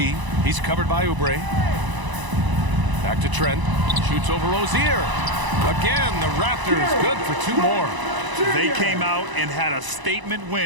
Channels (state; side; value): late; left; 1.0 ms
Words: He's covered by Oubre. Back to Trent. Shoots over Rozier. Again, the Raptors good for two more. They came out and had a statement